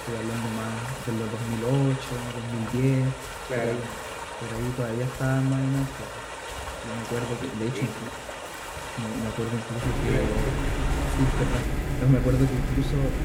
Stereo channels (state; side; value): identical; both; correlation 1.00